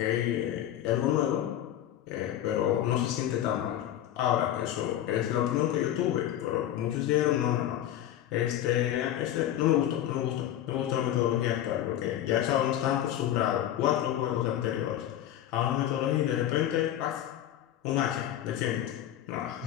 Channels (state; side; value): quieter; right; 11.9 dB